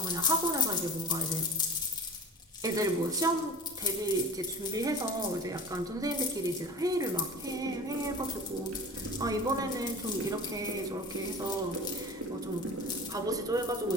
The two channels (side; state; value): both; normal; correlation 0.38